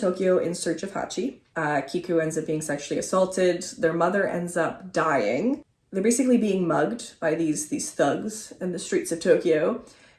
in search of Hachi. Kiku ends up being sexually assaulted. Their mother ends up dying. They're basically being mugged by these thugs in the streets of Tokyo.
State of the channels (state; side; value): identical; both; correlation 1.00